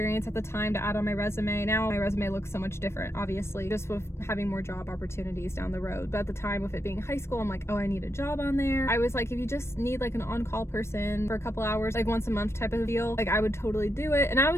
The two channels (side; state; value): right; late; 0.13 ms